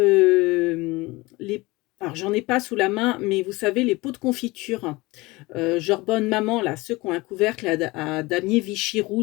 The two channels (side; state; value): right; quieter; 22.2 dB